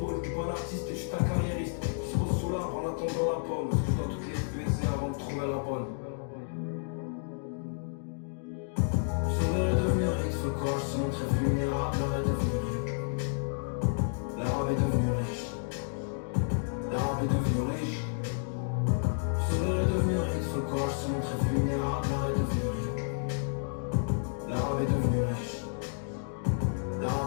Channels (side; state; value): right; silent; digital silence